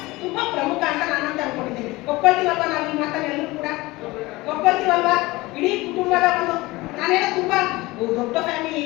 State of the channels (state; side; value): quieter; right; 20.9 dB